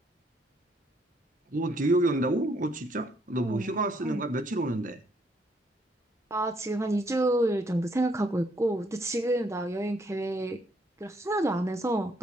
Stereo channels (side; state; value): both; normal; correlation 0.70